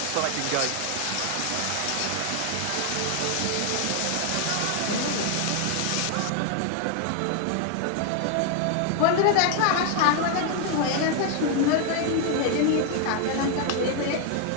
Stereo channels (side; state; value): both; different; correlation 0.00